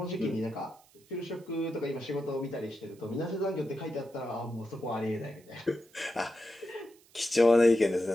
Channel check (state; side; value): noise; right; hiss, 29 dB below the sound